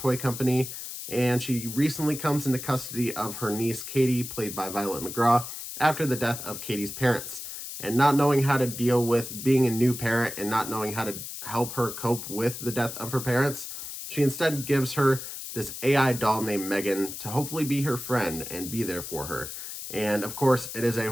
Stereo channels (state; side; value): noise; left; hiss, 9 dB below the sound